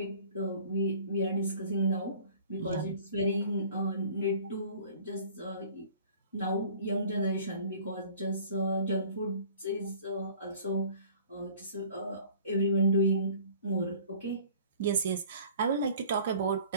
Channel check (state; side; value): inverted; both; correlation -0.49